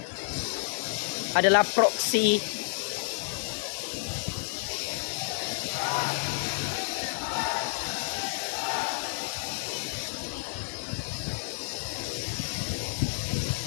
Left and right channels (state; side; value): silent; right; digital silence